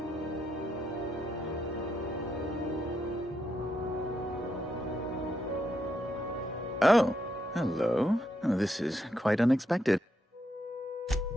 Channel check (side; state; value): both; normal; correlation 0.79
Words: Oh, hello. Oh, this is quite unexpected.